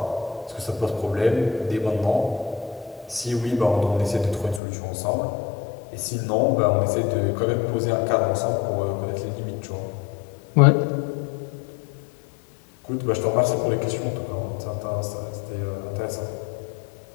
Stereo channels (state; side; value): drops out; right; at 4.6 s